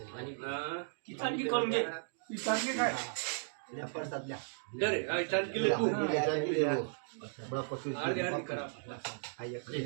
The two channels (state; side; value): silent; left; digital silence